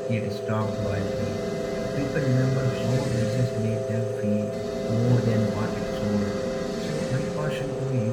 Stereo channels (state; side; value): identical; both; correlation 1.00